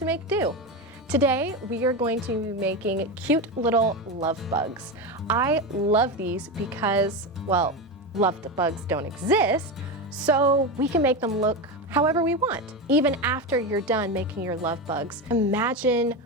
Make.Do. Today, we are going to be making cute little love bugs. I love these because, well, love bugs don't exist, so we can make them look however we want. Even after you're done making your love bugs, imagine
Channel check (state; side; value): normal; both; correlation 0.17